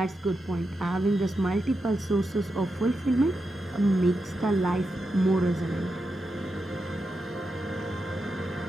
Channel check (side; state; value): both; normal; correlation 0.87